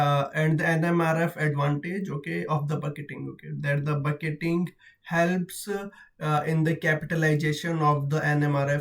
the NMRF advantage, okay, of the bucketing. Okay, that the bucketing helps in the capitalization of the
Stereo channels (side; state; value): both; identical; correlation 1.00